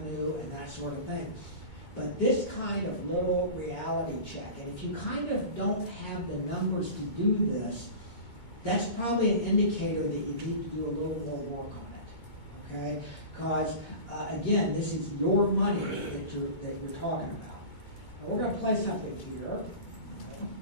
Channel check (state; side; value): late; right; 2.2 ms